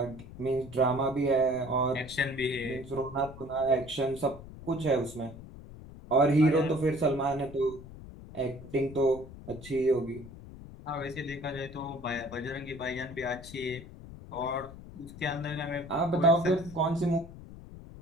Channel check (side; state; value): left; noise; rumble, 15 dB below the sound